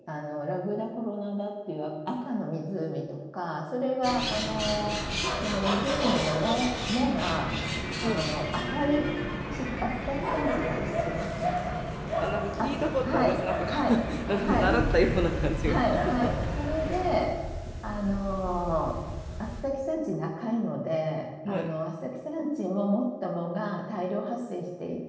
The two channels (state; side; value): identical; both; correlation 1.00